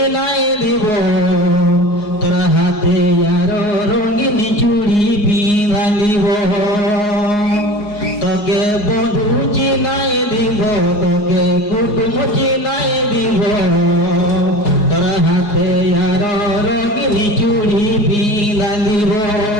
দিব তোর হাতে আর রঙিন চুড়ি পিঁধা দিব তোকে বন্ধু চিনাই দিব তোকে কুটুম চিনাই দিব তোর হাতে আর রঙিন চুড়ি পিঁধা দিব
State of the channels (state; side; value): late; right; 4.8 ms